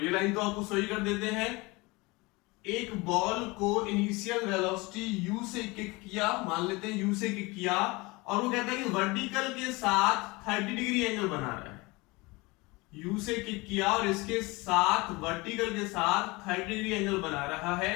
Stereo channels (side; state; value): right; quieter; 24.1 dB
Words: लाइन तो आपको सही कर देते हैं। एक बॉल को इनिशियल वेलोसिटी u से किक किया, मान लेते हैं u से किक किया, और वो कहता है कि वर्टिकल के साथ 30 डिग्री एंगल बना रहा है। u से किक किया और इसके साथ वर्टिकल के साथ 30 डिग्री एंगल बना रहा है,